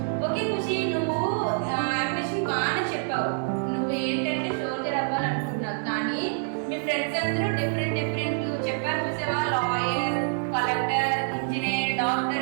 Okay Khushi, నువ్వు ambition బాగానే చెప్పావు. నువ్వు ఏంటంటే సోల్జర్ అవ్వాలనుకుంటున్నావు, కానీ మీ ఫ్రెండ్స్ అందరూ డిఫరెంట్ చెప్పారు చూసావా? లాయర్, కలెక్టర్, ఇంజనీర్,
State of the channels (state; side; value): silent; left; 60 dB below the other